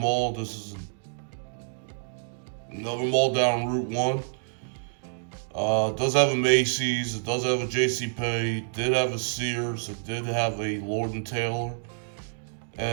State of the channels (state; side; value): silent; left; digital silence